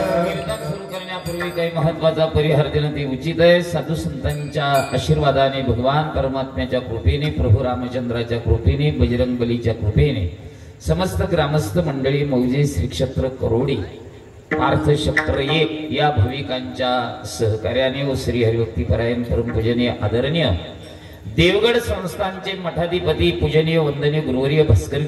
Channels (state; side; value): identical; both; correlation 1.00